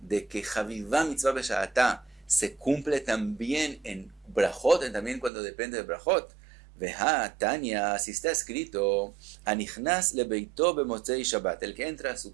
de que Chaviva mitzvah besha'ata se cumple también en brajot, también cuando depende de brajot? Veja Tanya, si está escrito, Anichnas lebeito bemotzei Shabbat, el que entra a su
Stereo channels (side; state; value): left; drops out; at 5.3 s